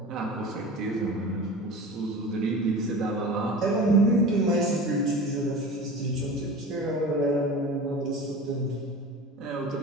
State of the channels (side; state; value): both; normal; correlation 0.34